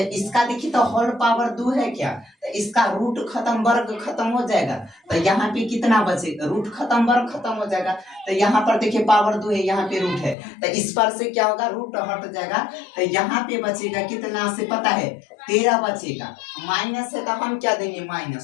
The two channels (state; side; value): drops out; right; at 10.4 s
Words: इसका देखिए तो होल पावर 2 है क्या, तो इसका रूट खत्म वर्ग खत्म हो जाएगा। तो यहाँ पे कितना बचेगा, रूट खत्म वर्ग खत्म हो जाएगा। तो यहाँ पर देखिए पावर 2 है, यहाँ पे रूट है, तो इस पर से क्या होगा, रूट हट जाएगा। तो यहाँ पे बचेगा कितना से पता है, 13 बचेगा। माइनस है तो हम क्या देंगे,